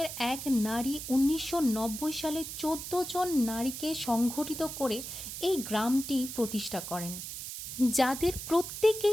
এক নারী ১৯৯০ সালে ১৪ জন নারীকে সংগঠিত করে এই গ্রামটি প্রতিষ্ঠা করেন, যাদের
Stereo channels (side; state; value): right; noise; hiss, 8 dB below the sound